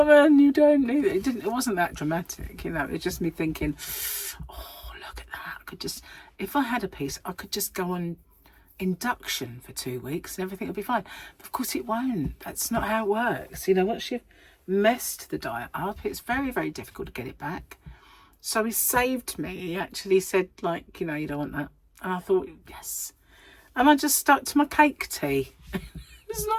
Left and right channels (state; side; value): identical; both; correlation 1.00